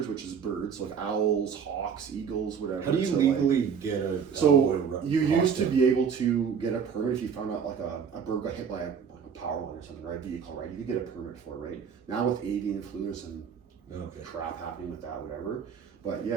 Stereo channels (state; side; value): quieter; left; 6.8 dB